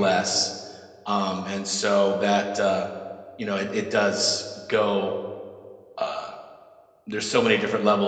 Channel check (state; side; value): identical; both; correlation 1.00